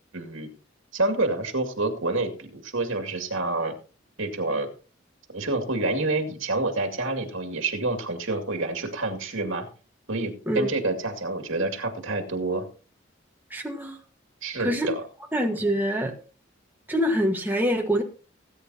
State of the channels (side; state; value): both; normal; correlation 0.11